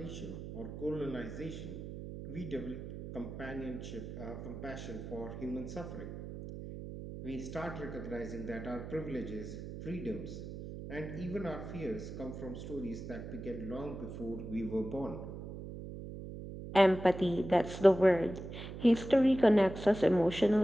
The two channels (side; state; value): right; noise; hum, 9 dB below the sound